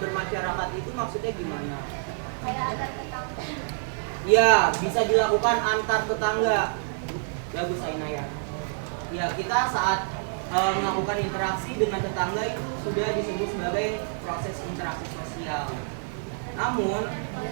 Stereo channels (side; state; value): left; silent; 60 dB below the other